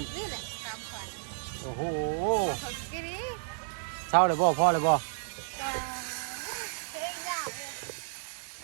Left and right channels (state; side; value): silent; left; digital silence